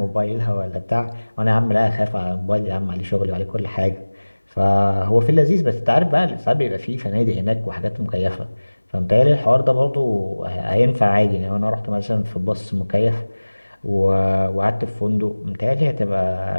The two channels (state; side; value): inverted; both; correlation -1.00